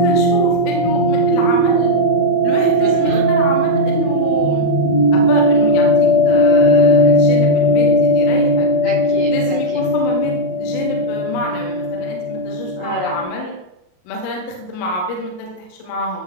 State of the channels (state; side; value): late; right; 33 ms